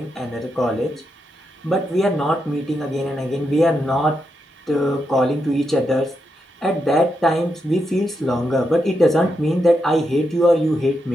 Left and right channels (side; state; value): both; normal; correlation 0.84